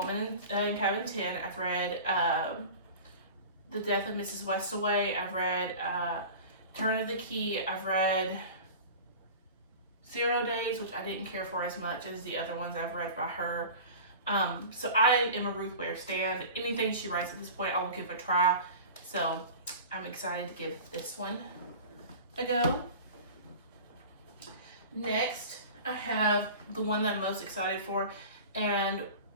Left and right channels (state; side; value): inverted; both; correlation -0.36